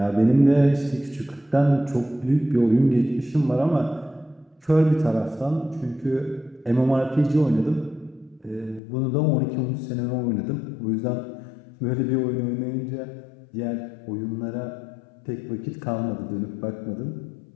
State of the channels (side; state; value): right; drops out; at 8.8 s